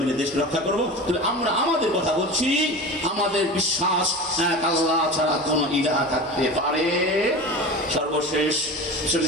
মিলে দেশ রক্ষা করব। তবে আমরা আমাদের কথা বলছি, আমাদের বিশ্বাস এক আল্লাহ ছাড়া কোনো ইলাহ থাকতে পারে। সর্বশেষ রাসূল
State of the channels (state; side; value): normal; both; correlation 0.32